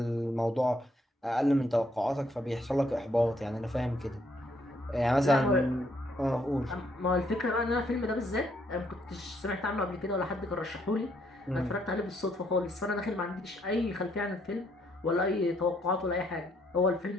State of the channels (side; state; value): both; normal; correlation 0.71